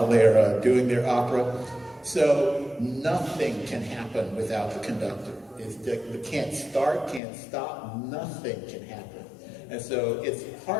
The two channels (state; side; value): drops out; right; at 7.2 s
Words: they're doing their opera. So nothing can happen without the conductor. It can't start, can't stop, nothing can happen. And so it's